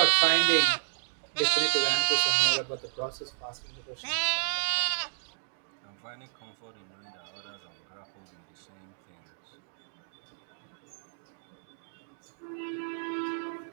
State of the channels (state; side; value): silent; left; digital silence